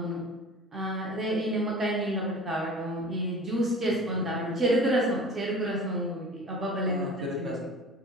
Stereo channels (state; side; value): normal; both; correlation 0.40